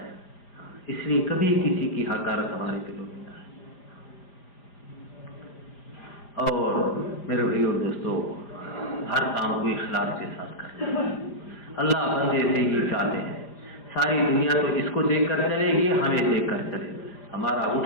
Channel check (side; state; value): right; late; 5.0 ms